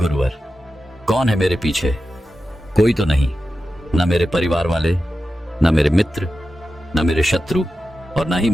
कौन है मेरे पीछे? कोई तो नहीं, ना मेरे परिवार वाले, ना मेरे मित्र, ना मेरे शत्रु और ना ही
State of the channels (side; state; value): both; normal; correlation 0.92